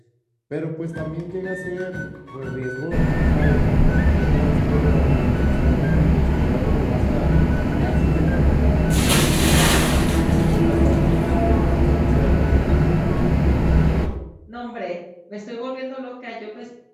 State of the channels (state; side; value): identical; both; correlation 1.00